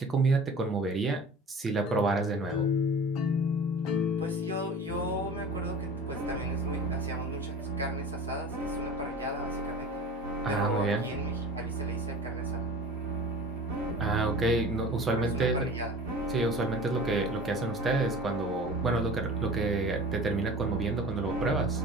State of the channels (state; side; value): normal; both; correlation 0.39